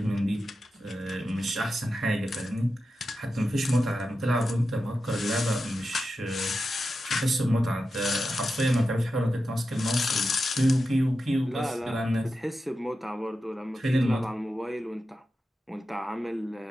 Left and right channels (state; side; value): normal; both; correlation 0.90